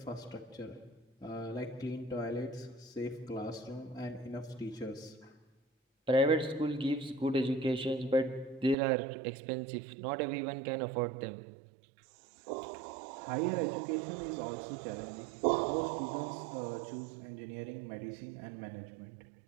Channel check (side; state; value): left; drops out; at 8.8 s